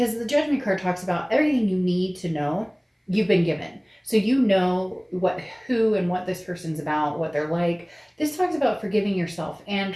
the Judgment card talks about everything you need to know you've been given. So who and what this person's about, what they're like. This talks about forgiving yourself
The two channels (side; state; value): both; identical; correlation 1.00